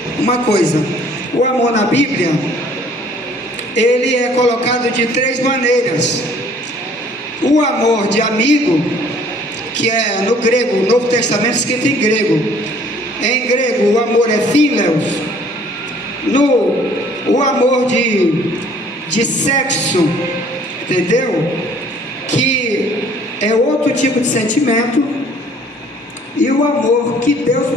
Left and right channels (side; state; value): both; normal; correlation 0.56